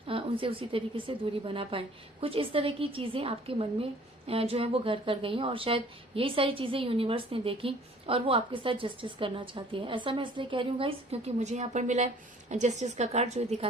उनसे उसी तरीके से दूरी बना पाए। कुछ इस तरह की चीजें आपके मन में जो है वो घर कर गई हैं और शायद यही सारी चीजें यूनिवर्स ने देखी और वो आपके साथ जस्टिस करना चाहती है। ऐसा मैं इसलिए कह रही हूँ गाइस, क्योंकि मुझे यहाँ पर मिला है जस्टिस का कार्ड, जो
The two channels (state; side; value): normal; both; correlation 0.54